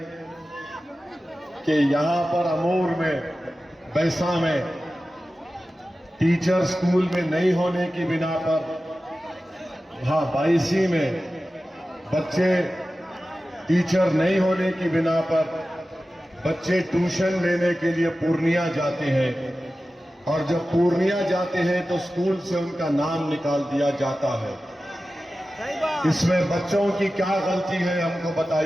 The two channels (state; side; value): normal; both; correlation 0.95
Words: कि यहां पर अमूर में, बैसा में टीचर स्कूल में नहीं होने की बिना पर, वहां बाईसी में बच्चे टीचर नहीं होने की बिना पर बच्चे ट्यूशन लेने के लिए पूर्णिया जाते हैं, और जब पूर्णिया जाते हैं तो स्कूल से उनका नाम निकाल दिया जाता है। इसमें बच्चों की क्या गलती है हमको